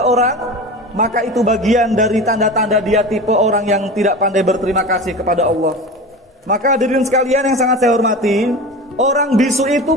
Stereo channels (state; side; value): normal; both; correlation 0.31